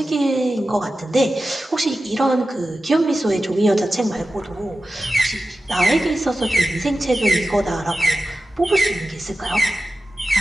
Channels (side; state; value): both; normal; correlation 0.93